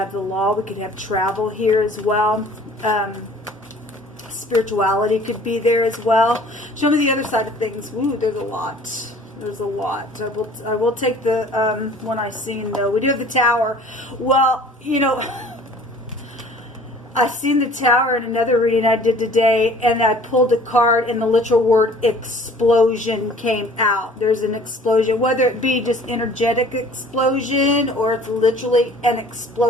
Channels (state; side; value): normal; both; correlation 0.50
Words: the law. We could have travel here as well. Spirituality could be there as well. Show me the other side of things. Ooh, there's a lot. There's a lot. I will take the one I seen though. We do have the tower. Well, you know, I seen the tower in another reading I did today, and I pulled a card, and the literal word explosion came out. There's an explosion, whether it be just energetic explosion or it's literally an